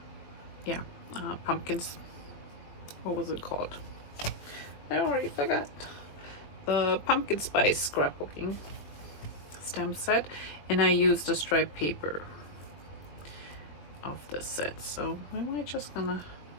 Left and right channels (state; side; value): late; right; 21 ms